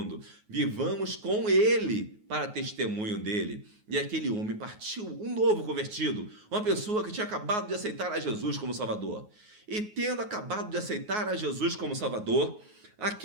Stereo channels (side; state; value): left; late; 9.5 ms